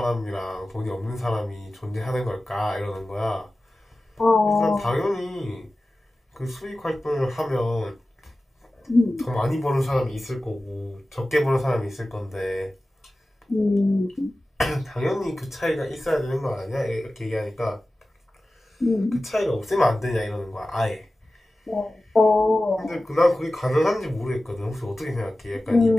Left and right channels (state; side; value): normal; both; correlation 0.95